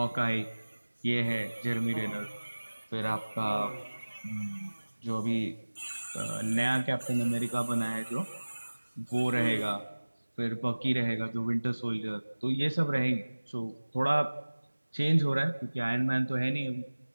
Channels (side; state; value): both; inverted; correlation -1.00